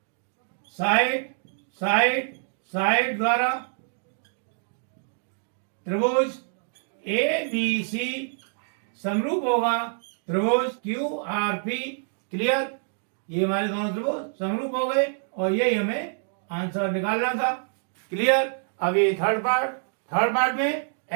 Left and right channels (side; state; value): left; silent; digital silence